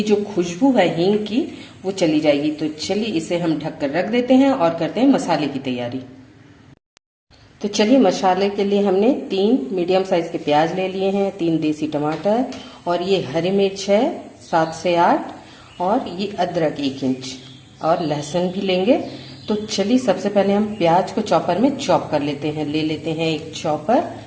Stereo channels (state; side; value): identical; both; correlation 1.00